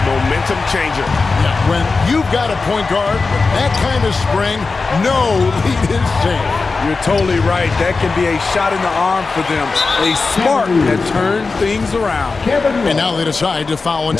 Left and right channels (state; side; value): quieter; right; 4.1 dB